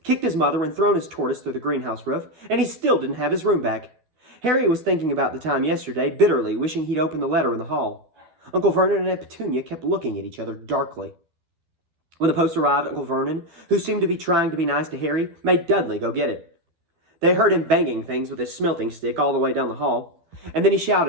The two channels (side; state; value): left; late; 12 ms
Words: kicked his mother, and thrown his tortoise through the greenhouse roof, and he still didn't have his room back. Harry was thinking about the time yesterday, bitterly, wishing he'd opened the letter in the hall. Uncle Vernon and Aunt Petunia kept looking at each other darkly. When the post arrived, Uncle Vernon, who seemed to be trying to be nice to Harry, made Dudley go get it. They heard him banging things with his smelting stick all the way down the hall, and then he